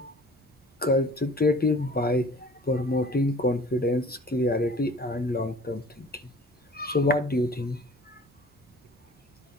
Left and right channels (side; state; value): both; normal; correlation 0.47